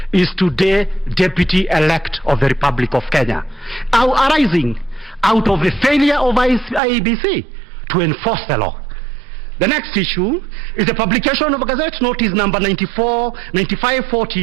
is today Deputy-elect of the Republic of Kenya, arising out of the failure of IEBC to enforce the law. The next issue is the publication of a Gazette Notice number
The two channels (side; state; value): left; drops out; at 6.8 s